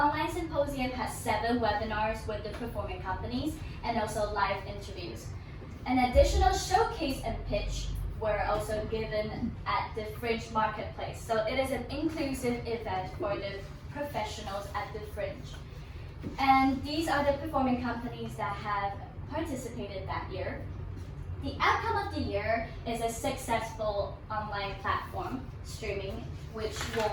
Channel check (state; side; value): identical; both; correlation 1.00